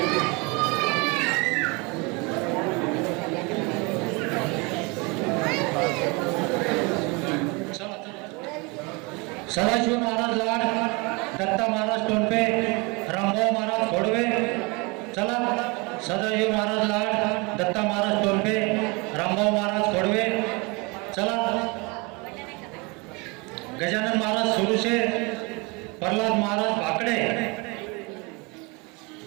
सदाशिव महाराज लाड, दत्ता महाराज टोपे, रामभाऊ महाराज खोडवे. चला सदाशिव महाराज लाड, दत्ता महाराज टोपे, रामभाऊ महाराज खोडवे. चला गजानन महाराज सुरुशे, प्रल्हाद महाराज भाकडे,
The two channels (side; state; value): left; quieter; 28.2 dB